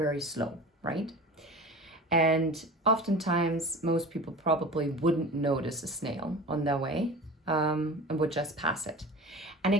slow, right? And oftentimes, most people probably wouldn't notice a snail on their way and would just pass it. And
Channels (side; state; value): both; normal; correlation 0.35